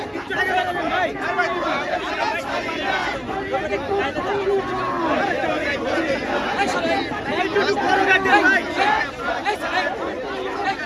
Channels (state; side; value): identical; both; correlation 1.00